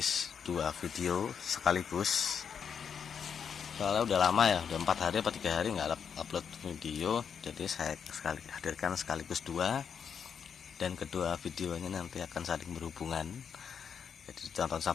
2 video sekaligus, soalnya udah lama ya, udah 4 hari atau 3 hari nggak upload video, jadi saya hadirkan sekaligus 2, dan kedua videonya nanti akan saling berhubungan. Jadi ditonton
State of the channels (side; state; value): right; quieter; 7.2 dB